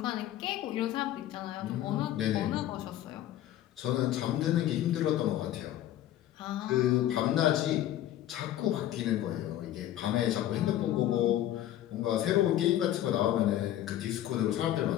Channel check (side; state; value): right; quieter; 12.7 dB